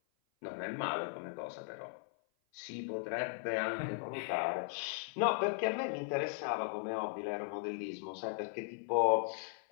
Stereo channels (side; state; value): right; silent; 53 dB below the other